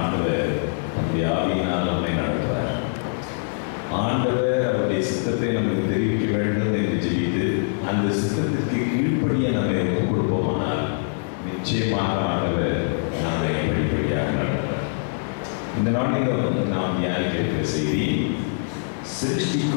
ஆண்டவர் நம்முடைய ஆவியினால் நம்மை நடத்துவார். ஆண்டவர் அவருடைய சித்தத்தை நமக்கு தெரிவிக்க வேண்டும் என்று ஜெபித்து அந்த சித்தத்திற்கு கீழ்ப்படிய நம்மை ஒப்புக் கொடுப்போமானால் நிச்சயமாக ஆண்டவர் நம்மை படிப்படியாக நடத்துவார். இந்த நாளில் நாம் தியானிக்கிற செய்தி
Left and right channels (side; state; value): right; silent; digital silence